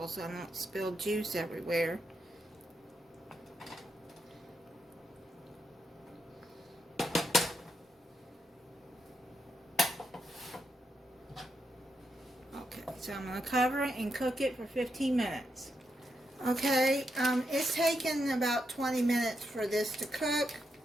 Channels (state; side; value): normal; both; correlation 0.83